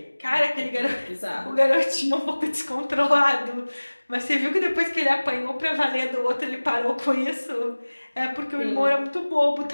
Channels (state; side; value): inverted; both; correlation -1.00